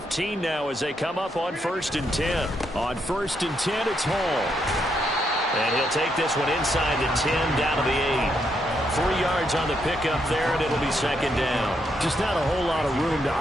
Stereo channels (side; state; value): both; normal; correlation 0.78